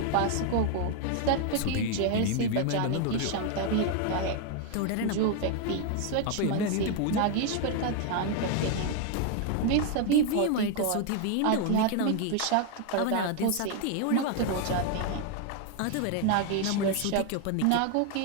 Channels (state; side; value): different; both; correlation 0.00